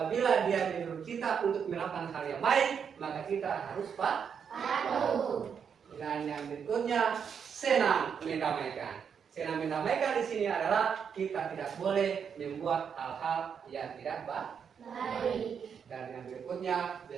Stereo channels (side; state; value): left; quieter; 7.1 dB